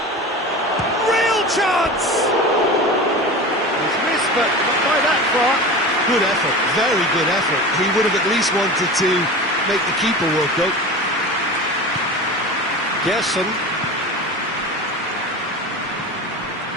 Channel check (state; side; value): normal; both; correlation 0.31